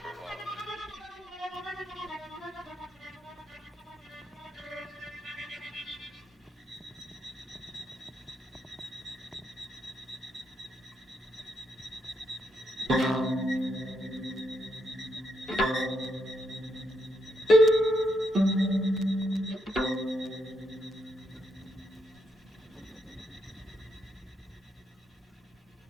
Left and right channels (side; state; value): both; normal; correlation 0.78